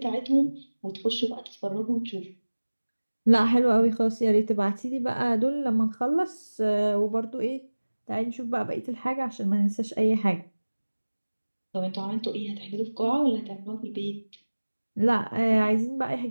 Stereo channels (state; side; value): inverted; both; correlation -1.00